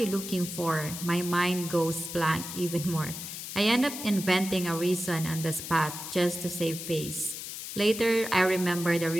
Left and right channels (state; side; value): noise; left; hiss, 8 dB below the sound